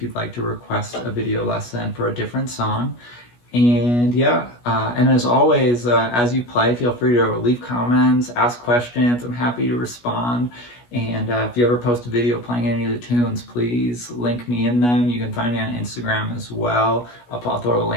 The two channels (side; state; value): right; late; 17 ms